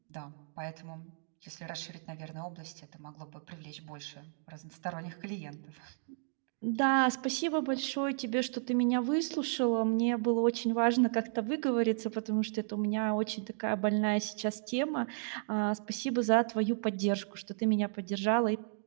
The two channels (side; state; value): left; silent; digital silence